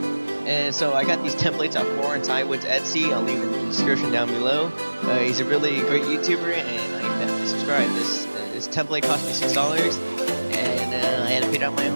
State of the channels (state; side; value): inverted; both; correlation -1.00